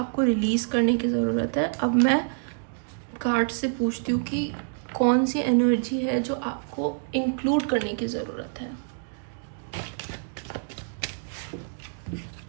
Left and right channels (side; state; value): left; silent; digital silence